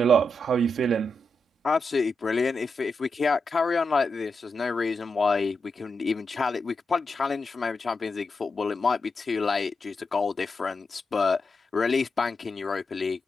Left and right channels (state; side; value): normal; both; correlation 0.86